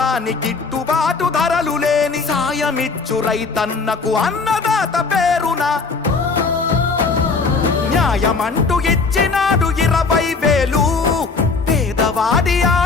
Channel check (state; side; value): quieter; right; 4.4 dB